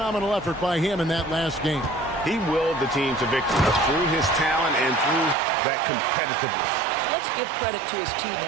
effort by him in that last game. He willed the team to victory through his talent and through that competitiveness. Let's give credit to his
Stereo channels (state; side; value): drops out; left; at 5.4 s